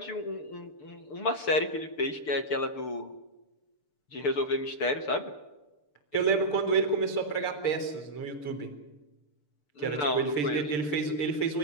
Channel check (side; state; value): right; late; 6.8 ms